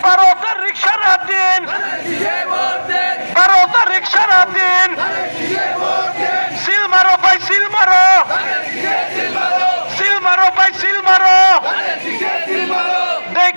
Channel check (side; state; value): both; inverted; correlation -1.00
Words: ভারতের রিক্সারা দিন, ভারতের রিক্সারা দিন, সিল মারো ভাই সিল মারো, সিল মারো ভাই সিল মারো,